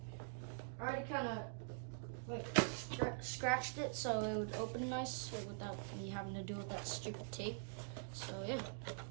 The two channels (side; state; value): left; silent; digital silence